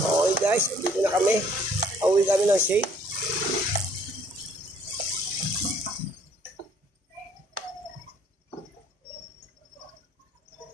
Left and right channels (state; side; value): normal; both; correlation 0.61